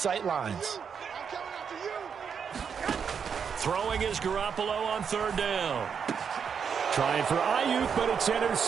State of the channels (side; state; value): left; quieter; 6.8 dB